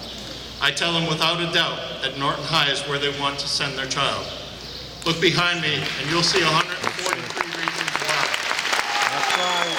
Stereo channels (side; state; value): both; identical; correlation 1.00